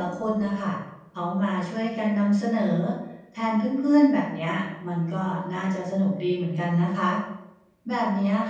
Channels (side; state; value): both; identical; correlation 1.00